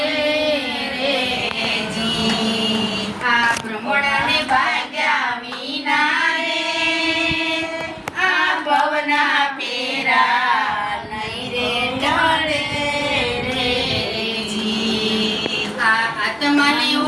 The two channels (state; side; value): identical; both; correlation 1.00